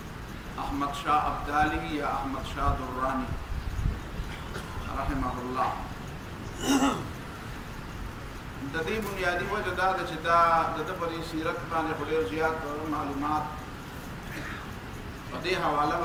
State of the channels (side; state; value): both; identical; correlation 1.00